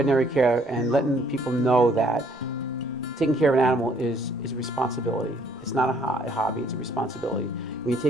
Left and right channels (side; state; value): both; normal; correlation 0.63